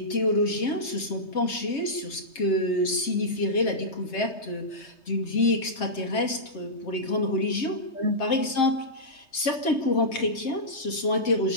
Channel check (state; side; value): late; right; 3.3 ms